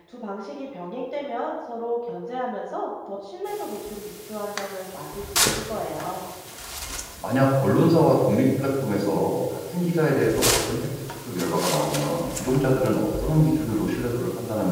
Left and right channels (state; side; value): identical; both; correlation 1.00